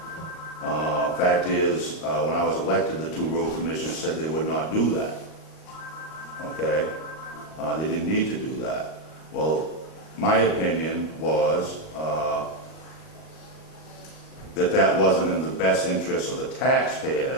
Fact is, when I was elected, the 2 road commissioners said they would not do that. Okay? They didn't need to do that. Well, my opinion was that wasn't in the best interest of the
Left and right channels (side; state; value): right; late; 38 ms